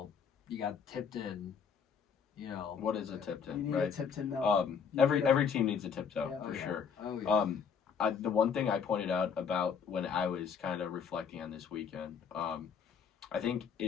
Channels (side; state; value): right; quieter; 6.6 dB